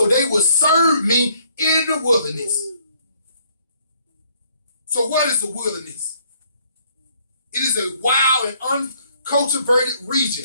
they will serve me in the wilderness. So what is the wilderness? It is a wild and uncultivated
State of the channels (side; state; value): both; inverted; correlation -0.65